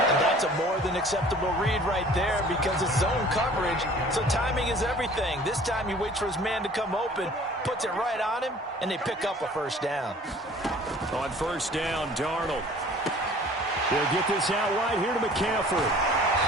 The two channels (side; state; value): both; normal; correlation 0.49